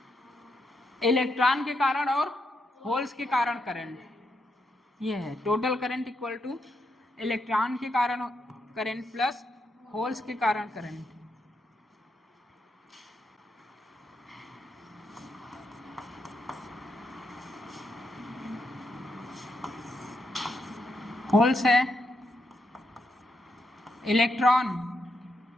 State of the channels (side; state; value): both; normal; correlation 0.81